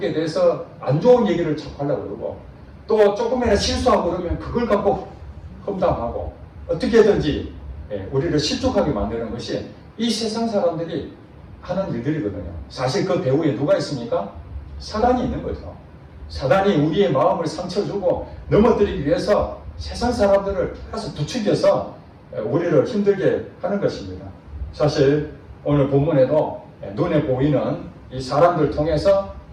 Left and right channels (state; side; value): identical; both; correlation 1.00